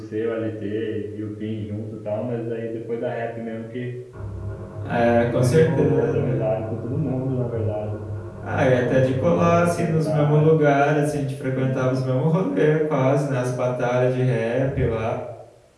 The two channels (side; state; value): both; identical; correlation 1.00